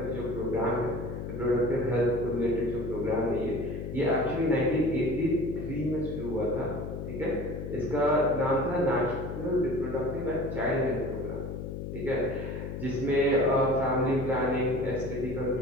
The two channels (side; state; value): left; noise; hum, 6 dB below the sound